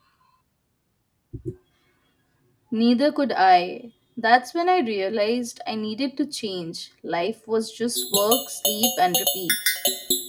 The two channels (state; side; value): identical; both; correlation 1.00